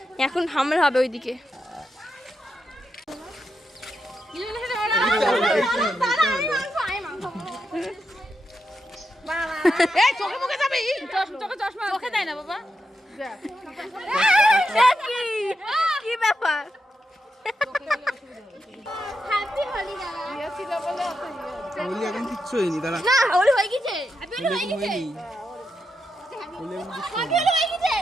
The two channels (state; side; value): normal; both; correlation 0.85